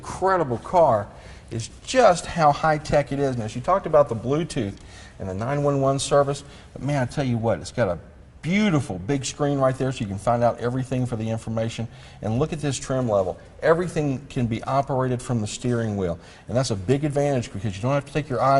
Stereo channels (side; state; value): both; identical; correlation 1.00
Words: car is just how high-tech it is. Now, she talked about the Bluetooth and the 911 service, but man, I tell you what, it's got a beautiful big screen right there so you can find out everything for the information. And look at this trim level. Everything can be operated from the steering wheel, and that's a big advantage because you don't have to take your